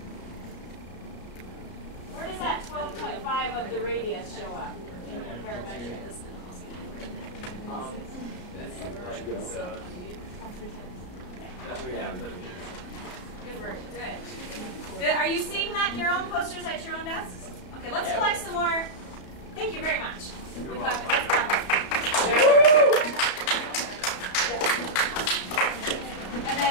Where does that 12.5 of the radius show up in your parametric? Good work. Good. Are you seeing that in your own posters at your own desks? Okay, let's collect some more. Thank you very much. Let's clap up. And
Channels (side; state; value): right; late; 33 ms